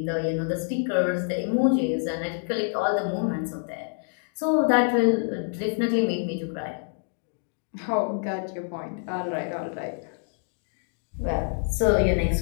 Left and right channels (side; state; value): right; silent; digital silence